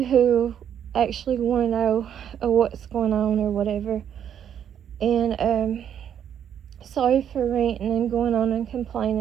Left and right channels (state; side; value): quieter; left; 9.2 dB